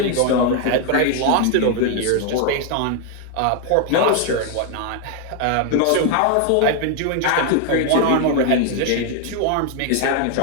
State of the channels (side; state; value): both; different; correlation 0.01